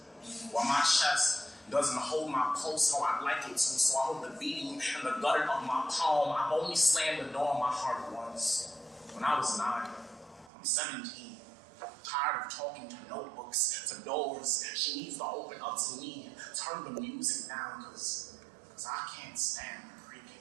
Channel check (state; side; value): drops out; left; at 10.5 s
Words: While my chest doesn't hold my pulse how I'd like it to, so I hold the beating in the gutter of my palm. I've only slammed the door on my heart once, when I was 9. I'm 17, tired of talking to notebooks, to doors. She needs to open up to me, turn the music down, because I can't stand the